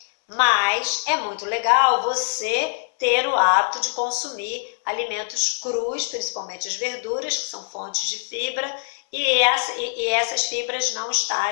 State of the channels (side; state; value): right; silent; 62 dB below the other